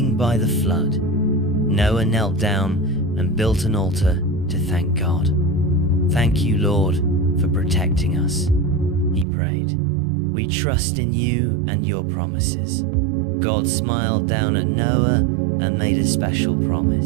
by the flood. Noah knelt down and built an altar to thank God. "Thank you, Lord, for protecting us," he prayed. "We trust in you and your promises." God smiled down at Noah and made a special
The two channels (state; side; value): drops out; left; at 9.2 s